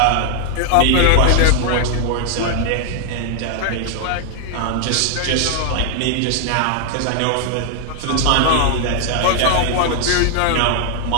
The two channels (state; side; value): different; both; correlation 0.00